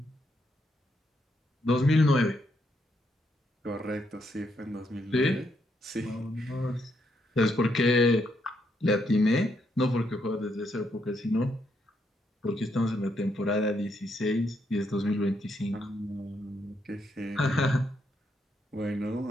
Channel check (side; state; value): both; normal; correlation 0.77